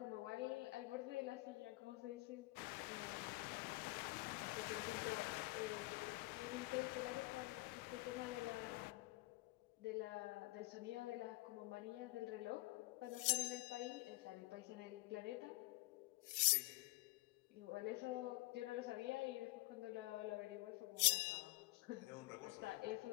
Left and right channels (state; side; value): quieter; right; 22.4 dB